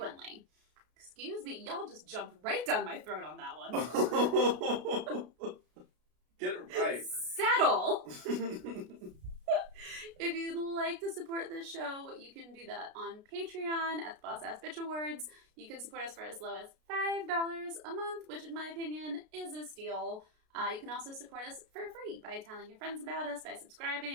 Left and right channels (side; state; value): left; late; 33 ms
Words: Excuse me, y'all just jumped right down my throat on that one. Get it right. Settle! If you'd like to support this show, you can do that on Patreon at the Boss Ass Bitch Awards. You can support us for as low as $5 a month, which in my opinion is a steal. You can also support us for free by telling your friends about us, by